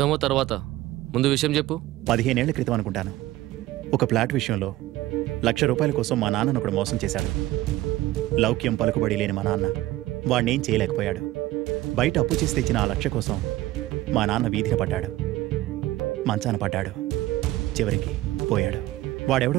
తర్వాత, ముందు విషయం చెప్పు. 15 ఏళ్ల క్రితం అనుకుంటాను, ఒక ఫ్లాట్ విషయంలో ₹1,00,000 కోసం మా నాన్నను ఒకడు మోసం చేశాడు. లౌక్యం పలుకుబడి లేని మా నాన్న వాడినేం చేయలేకపోయాడు. బయట అప్పు చేసి తెచ్చిన ఆ 1,00,000 కోసం మా నాన్న వీధిన పడ్డాడు, మంచాన పడ్డాడు, చివరికి పోయాడు.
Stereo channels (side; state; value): left; quieter; 16.6 dB